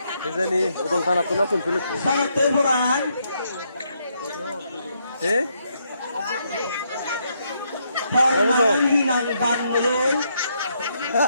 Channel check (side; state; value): both; inverted; correlation -0.76